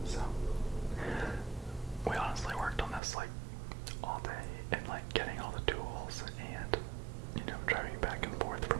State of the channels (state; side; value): drops out; left; at 3.0 s